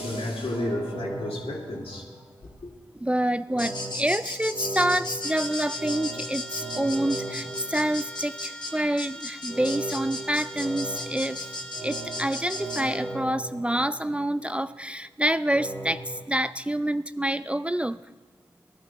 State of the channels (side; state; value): both; normal; correlation 0.80